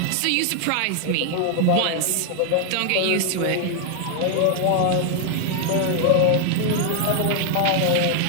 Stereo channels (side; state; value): both; different; correlation 0.00